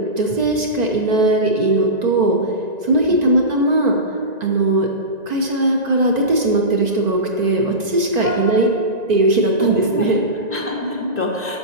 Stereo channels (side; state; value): left; late; 1.9 ms